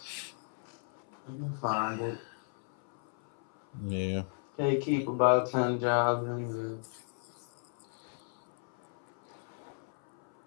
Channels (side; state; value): right; silent; 55 dB below the other